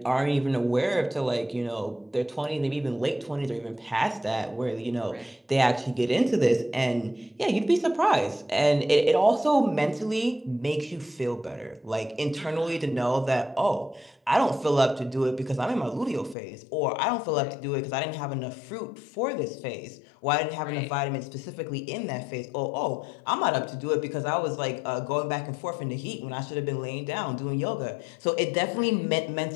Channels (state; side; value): drops out; right; at 16.4 s